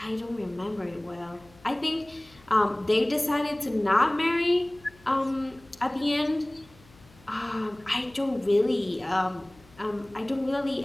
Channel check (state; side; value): noise; left; hum, 26 dB below the sound